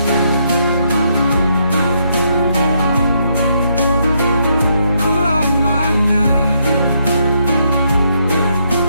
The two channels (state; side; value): inverted; both; correlation -0.75